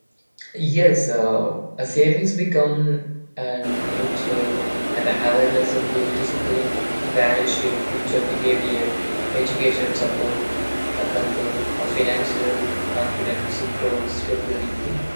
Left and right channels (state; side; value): inverted; both; correlation -1.00